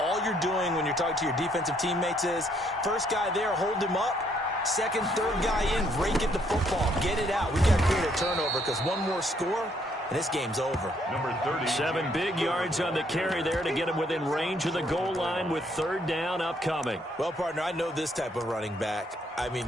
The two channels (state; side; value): normal; both; correlation 0.69